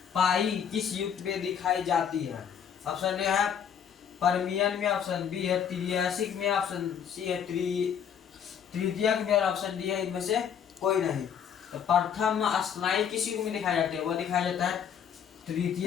पाई किस युग में दिखाई जाती है? ऑप्शन ए है पर्मियन में, ऑप्शन बी है त्रियासिक में, ऑप्शन सी है तृतीयक में, और ऑप्शन डी है इनमें से कोई नहीं। तो प्रथम स्तनायु किस युग में दिखाई जाती है? वह दिखाया जाता है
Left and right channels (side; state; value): right; quieter; 8.1 dB